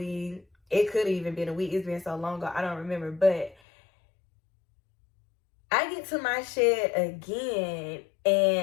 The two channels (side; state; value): right; drops out; at 3.6 s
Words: it could have even been a week. It's been so long ago, I don't remember. But I get to my shed again,